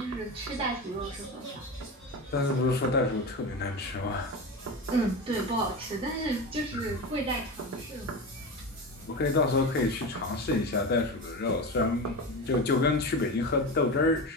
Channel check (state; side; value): normal; both; correlation 0.24